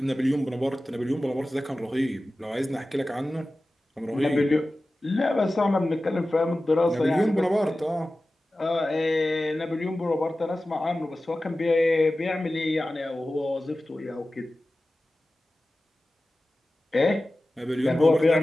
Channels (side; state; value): both; normal; correlation 0.95